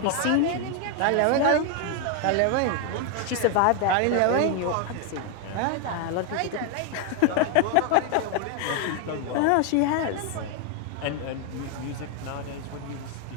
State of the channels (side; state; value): both; different; correlation 0.01